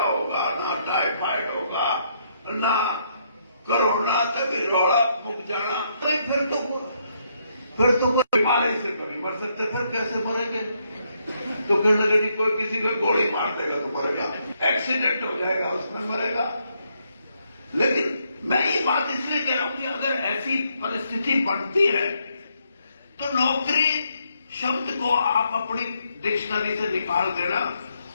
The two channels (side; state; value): both; inverted; correlation -0.75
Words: ना टाइफाइड होगा, ना कोरोना तक रोड़ा मुक जाना। तो फिर तो कोई बीमारी से कभी मर सकते, फिर कैसे मरेंगे? तो फिर लगे नहीं, कोई किसी को गोली मार देगा तो मरेगा, एक्सीडेंट हो जाएगा उसमें मरेगा। लेकिन मैं ये बात इसलिए कह रहा हूं कि अगर ऐसी परिस्थिति बनती है तो नौकरी शब्द को आप अपनी डिक्शनरी से निकाल देना।